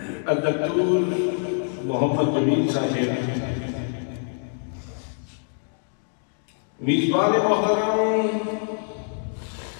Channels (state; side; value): silent; right; 62 dB below the other